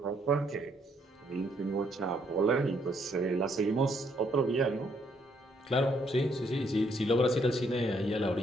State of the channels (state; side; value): normal; both; correlation 0.71